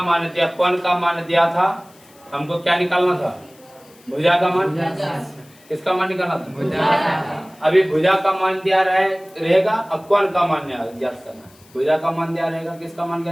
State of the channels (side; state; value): left; noise; hiss, 27 dB below the sound